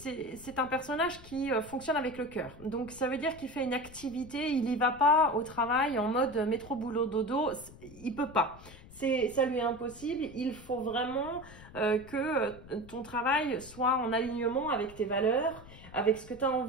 un personnage qui fonctionne avec le cœur. Donc, ça veut dire qu'il fait une activité, il n'y va pas au travail en mode métro, boulot, dodo, il peut pas. Ça lui est impossible, il faut vraiment que ton travail soit en alignement avec tes valeurs, avec ce que tu as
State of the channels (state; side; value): noise; left; rumble, 19 dB below the sound